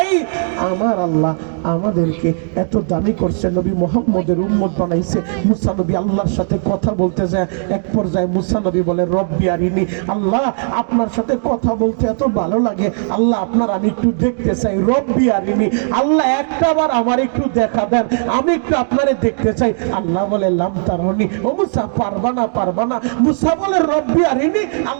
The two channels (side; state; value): left; silent; digital silence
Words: আমার আল্লাহ আমাদেরকে এত দামি করছে, নবী মুহাম্মদের উম্মত বানাইছে। মুসা নবী আল্লাহর সাথে কথা বলতে যায়, এক পর্যায়ে মুসা নবী বলে রব্বি আরিনি, আল্লাহ আপনার সাথে কথা বলতে এত ভালো লাগে, আল্লাহ আপনার আমি একটু দেখতে চাই। রব্বি আরিনি, আল্লাহ একটাবার আমার একটু দেখা দেন, আমি একটু আপনারে দেখতে চাই। আল্লাহ বলে লাম তারানি, ও মুসা পারবা না, পারবা না। মুসা বলে রব্বি আরিনি,